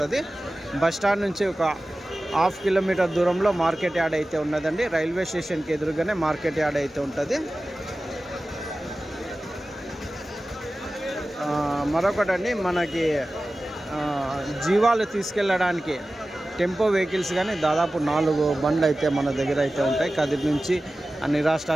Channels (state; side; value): normal; both; correlation 0.96